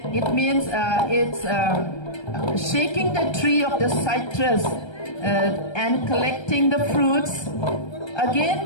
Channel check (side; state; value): right; late; 1.3 ms